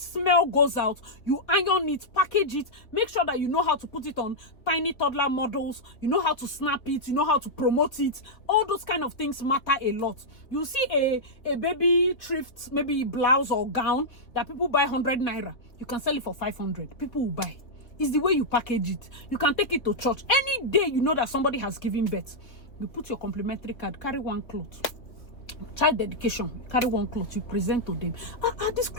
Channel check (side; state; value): right; late; 3.5 ms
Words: goes out, you iron it, package it, make sure that you know how to put it on tiny toddler models, you know how to snap it, you know how to promote it. All those kind of things matter a lot. You see a baby thrift, maybe blouse or gown that people buy 100 naira, you can sell it for 500. People will buy. It's the way you package it. You can take it to church. Any day you know that somebody has given birth, you put your complimentary card, carry one cloth. Child dedication, carry one cloth, you present to them. This